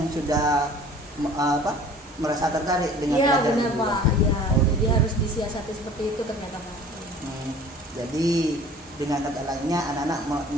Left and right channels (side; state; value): both; normal; correlation 0.47